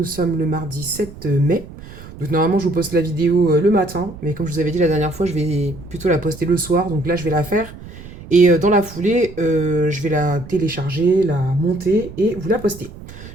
sommes le mardi 7 mai. Donc normalement je vous poste la vidéo le matin. Mais comme je vous avais dit la dernière fois, je vais plutôt la poster le soir. Donc là je vais la faire. Et dans la foulée, je vais la télécharger, la monter et vous la poster.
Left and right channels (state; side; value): noise; right; rumble, 15 dB below the sound